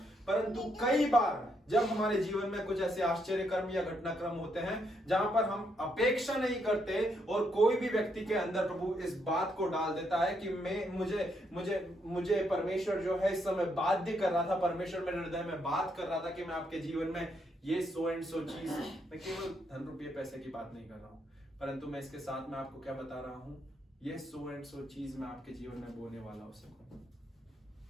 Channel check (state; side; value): normal; both; correlation 0.76